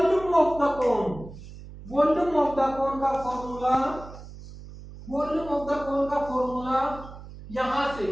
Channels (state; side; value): noise; right; hum, 15 dB below the sound